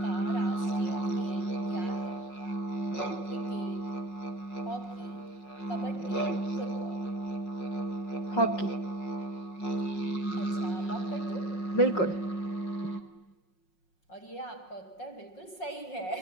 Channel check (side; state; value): right; late; 5.5 ms